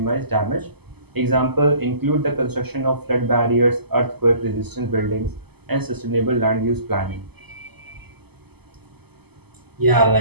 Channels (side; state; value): left; late; 0.97 ms